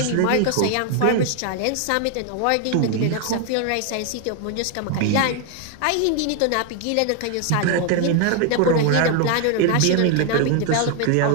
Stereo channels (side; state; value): both; different; correlation 0.01